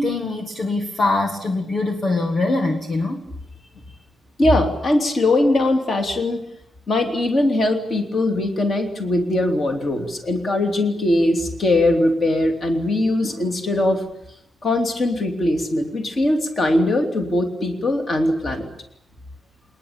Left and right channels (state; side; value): normal; both; correlation 0.85